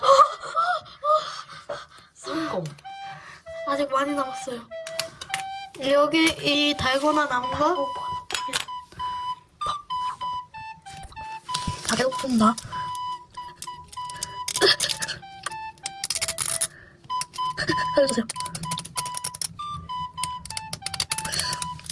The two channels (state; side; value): identical; both; correlation 1.00